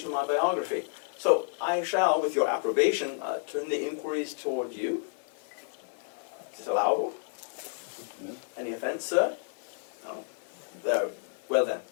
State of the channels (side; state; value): right; silent; digital silence